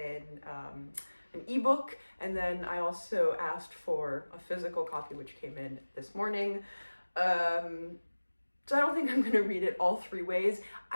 ebook, and then I also asked for a physical copy, which came in this morning. So I don't think I'm going to read it all 3 ways.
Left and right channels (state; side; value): inverted; both; correlation -1.00